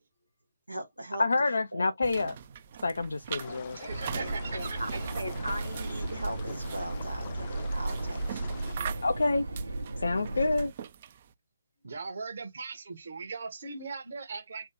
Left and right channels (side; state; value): both; inverted; correlation -0.89